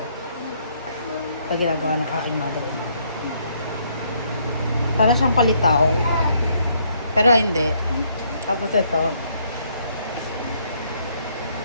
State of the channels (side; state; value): both; inverted; correlation -0.70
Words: Ito ginagawa ng aking mother-in-law. Para siyang palitaw. Pero hindi. Tapos ito.